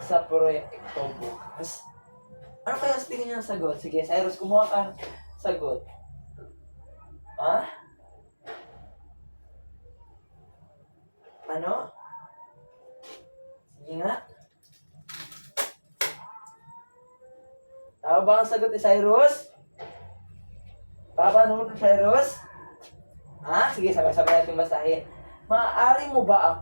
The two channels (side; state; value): both; inverted; correlation -1.00